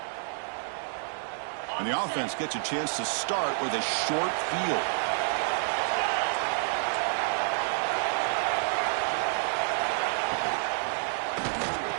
And the offense gets a chance to start with a short field.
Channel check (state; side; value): silent; left; digital silence